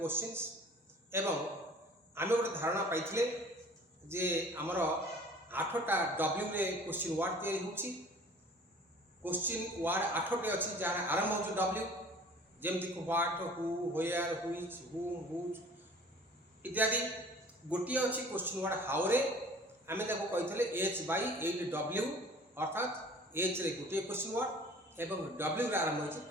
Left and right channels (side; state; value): both; normal; correlation 0.48